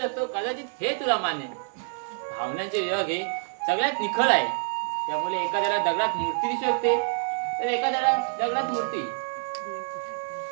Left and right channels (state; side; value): silent; left; digital silence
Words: कदाचित हे तुला मान्य भावनांचे विभाग हे सगळ्यात निखळ आहे त्यामुळे एखाद्याला दगडात मूर्ती दिसू शकते तर एखाद्याला दगडात मूर्ती